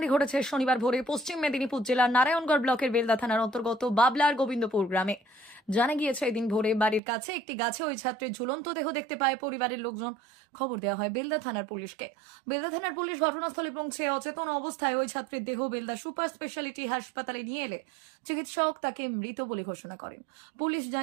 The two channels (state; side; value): drops out; left; at 7.0 s